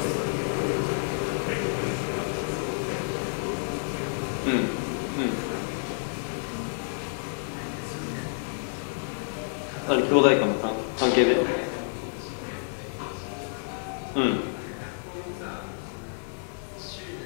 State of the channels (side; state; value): right; silent; digital silence